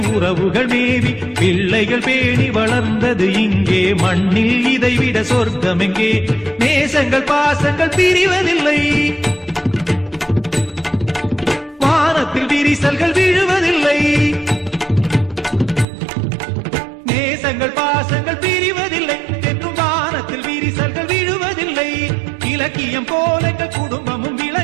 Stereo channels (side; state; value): left; drops out; at 15.9 s